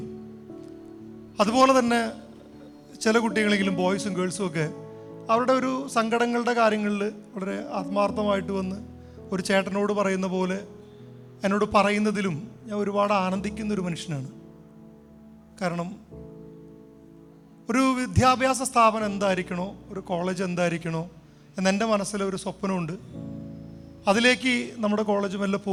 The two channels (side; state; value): both; identical; correlation 1.00